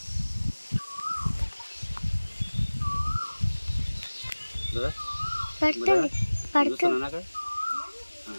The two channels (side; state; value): both; inverted; correlation -1.00